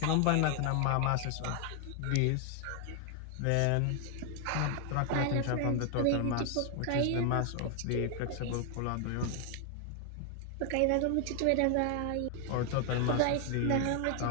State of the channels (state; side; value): different; both; correlation 0.00